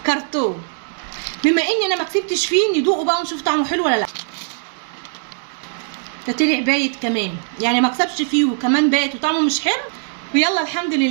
كرتون. بما اني انا ما كسبتش فيه، ندوقه بقى ونشوف طعمه حلو ولا لا. ده طلع بايت كمان، يعني ما كسبش فيه وكمان بايت وطعمه مش حلو. ويلا الحمد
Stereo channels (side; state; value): left; silent; 65 dB below the other